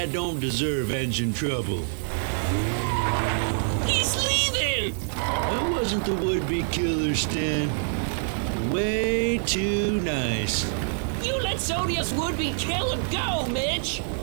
don't deserve engine trouble. He's leaving! That wasn't the would-be killer, Stan. Way too nice. You let Sonia's would-be killer go, Mitch!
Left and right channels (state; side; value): silent; left; 61 dB below the other